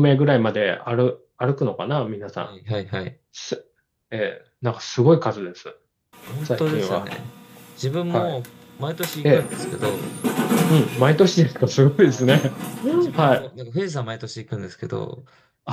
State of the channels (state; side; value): identical; both; correlation 1.00